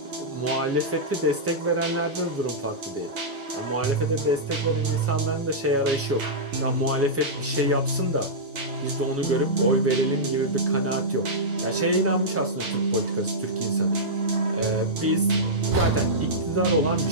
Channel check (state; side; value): normal; both; correlation -0.12